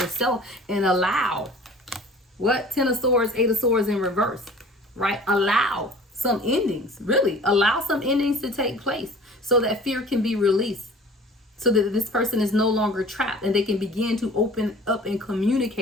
and allow what? Ten of Swords, Eight of Swords in reverse, right? Allow some endings, really allow some endings to take place so that fear can be released, so that this person is no longer trapped and they can begin to open up and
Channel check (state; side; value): normal; both; correlation 0.46